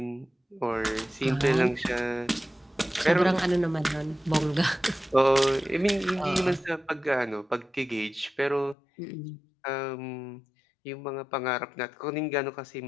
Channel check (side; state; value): right; drops out; at 8.8 s